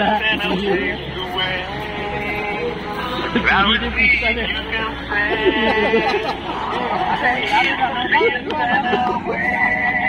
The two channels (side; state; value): both; identical; correlation 1.00